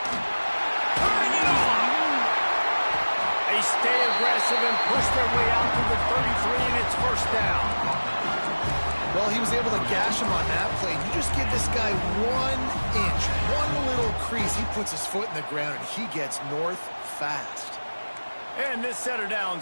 Turning it on. They stay aggressive and push their way out to the 33, and it's first down. Well, he was able to gash him on that play. You just give this guy 1 inch, one little crease. He puts his foot in the ground, and he gets north fast. And this set of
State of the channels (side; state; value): both; inverted; correlation -1.00